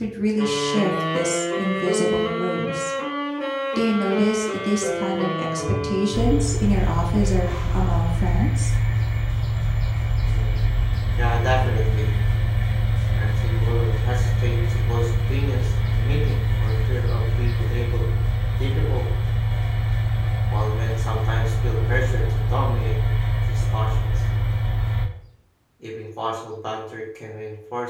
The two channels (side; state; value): both; identical; correlation 1.00